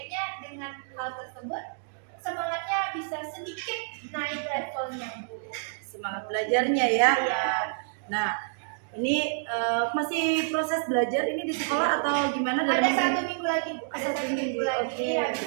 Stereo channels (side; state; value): left; silent; digital silence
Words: dengan hal tersebut semangatnya bisa sedikit naik levelnya Bu. Semangat belajarnya ya. Iya. Nah, ini masih proses belajar ini di sekolah atau gimana? Ada 1 minggu lagi Bu, ada Satu 1 minggu minggu, lagi, oke. habis